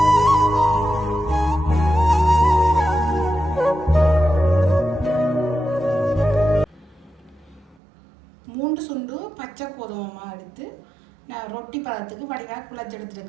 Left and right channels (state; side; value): drops out; left; at 7.8 s